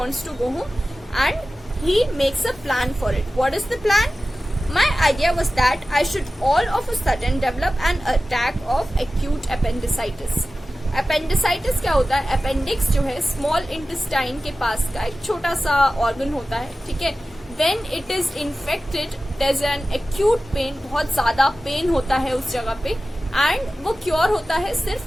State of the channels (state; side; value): normal; both; correlation 0.95